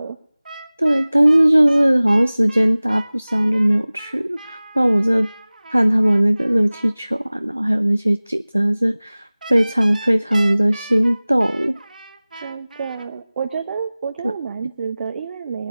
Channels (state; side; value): inverted; both; correlation -0.99